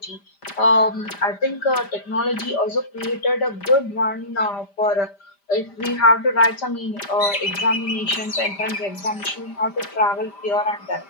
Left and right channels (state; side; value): late; right; 5.0 ms